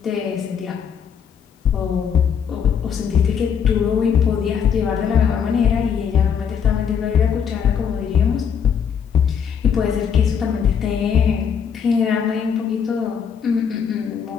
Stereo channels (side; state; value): right; quieter; 7.4 dB